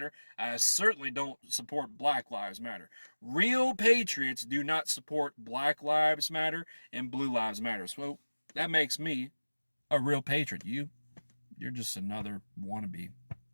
I certainly don't support Black Lives Matter. Real patriots do not support Black Lives Matter and Blue Lives Matter. So that makes me a real patriot. You're just another wannabe.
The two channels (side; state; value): both; inverted; correlation -1.00